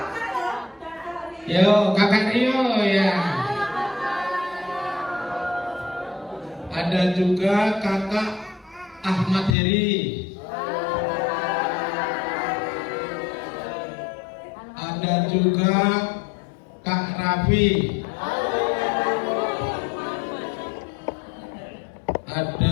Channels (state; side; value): drops out; right; at 9.6 s